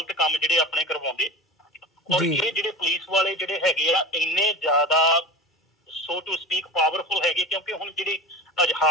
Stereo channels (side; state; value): both; normal; correlation 0.31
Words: ਕੰਮ ਜਿਹੜੇ ਆਪਣੇ ਕਰਵਾਉਂਦੇ। ਔਰ ਇਹ ਜਿਹੜੇ ਪੁਲਿਸ ਵਾਲੇ ਜਿਹੜੇ ਹੈਗੇ ਆ ਇੰਨੇ ਜ਼ਿਆਦਾ ਸੋ ਟੂ ਸਪੀਕ ਪਾਵਰਫੁਲ ਹੈਗੇ, ਕਿਉਂਕਿ ਹੁਣ ਜਿਹੜੀ